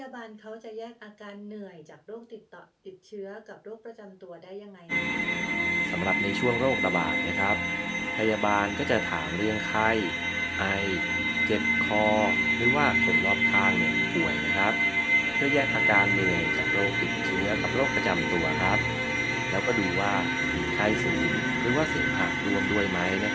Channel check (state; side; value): identical; both; correlation 1.00